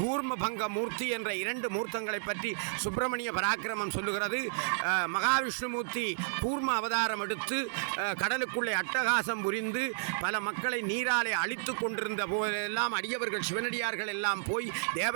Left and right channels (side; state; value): left; silent; digital silence